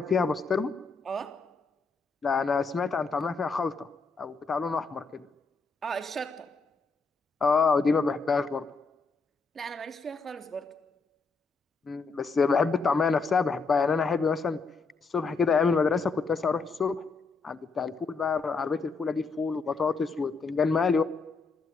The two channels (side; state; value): right; quieter; 4.4 dB